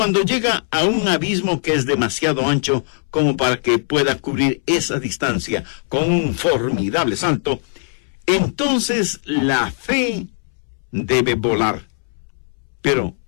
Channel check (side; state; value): right; silent; 66 dB below the other